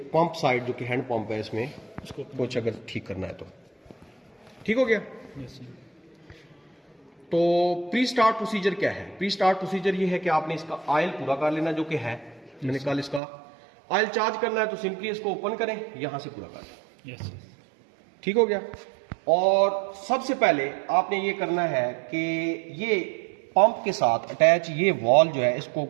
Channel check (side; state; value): left; drops out; at 13.2 s